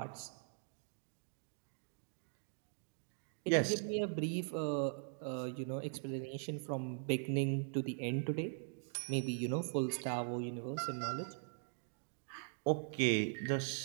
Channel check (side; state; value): left; silent; digital silence